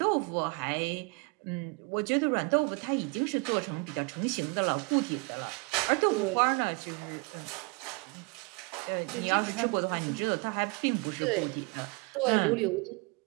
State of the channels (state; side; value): quieter; left; 30.7 dB